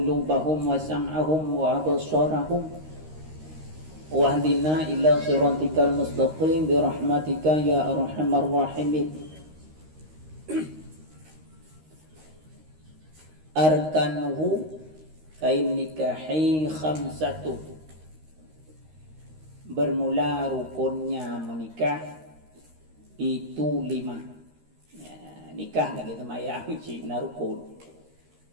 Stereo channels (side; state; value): left; late; 13 ms